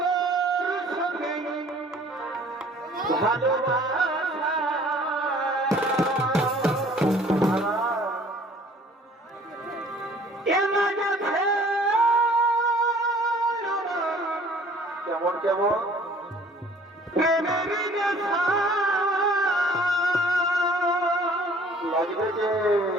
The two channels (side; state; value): both; normal; correlation 0.53